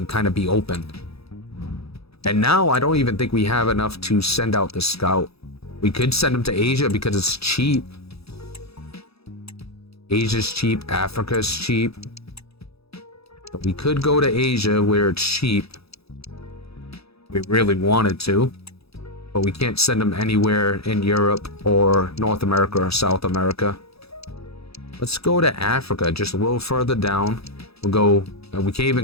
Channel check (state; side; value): late; right; 0.77 ms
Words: kind of be open. And now I don't even think we have enough to send out the scout. We could send him to Asia because it's cheap. Asia's cheap, Africa's cheap. But we could go to Asia where it's cheap. We really wanted to, but we can't send them anywhere in Europe or North America or South America. Let's go to Africa, just a little further down. We'll go, we can't